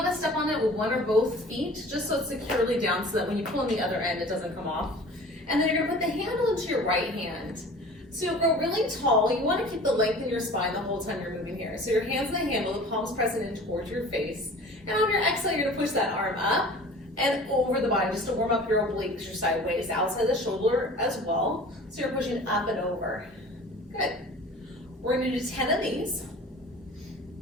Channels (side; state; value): both; normal; correlation 0.43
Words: to step on it with one or both feet, just so it's securely down so that when you pull on the other end, it doesn't come off. And then you're going to put the handle into your right hand. So you'll grow really tall. You want to keep the length in your spine the whole time you're moving here. So your hands on the handle, the palms pressing in towards your face. And on your exhale, you're going to push that arm up and over the body just to warm up your obliques, your sideways, outside the shoulder as well. So you're pushing up and over. Good. We're going to do 10 of these.